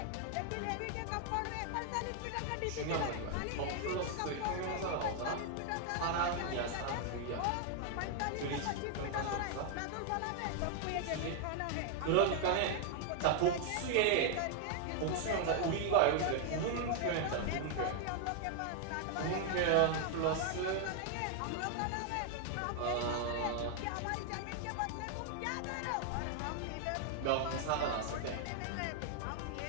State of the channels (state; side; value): different; both; correlation 0.00